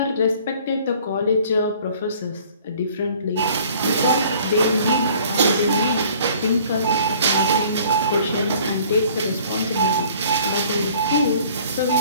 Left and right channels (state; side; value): inverted; both; correlation -0.53